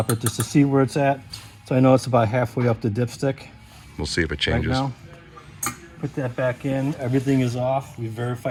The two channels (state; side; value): identical; both; correlation 1.00